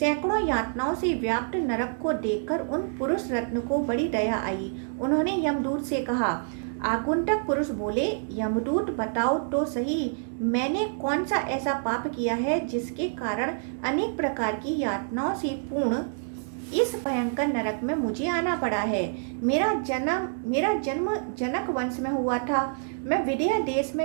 यातनाओं से व्याप्त नरक को देखकर उन पुरुष रत्न को बड़ी दया आई। उन्होंने यमदूत से कहा। आगंतुक पुरुष बोले, यमदूत, बताओ तो सही, मैंने कौन सा ऐसा पाप किया है जिसके कारण अनेक प्रकार की यातनाओं से पूर्ण इस भयंकर नरक में मुझे आना पड़ा है। मेरा जन्म जनक वंश में हुआ था। मैं विदेह देश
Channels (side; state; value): left; silent; digital silence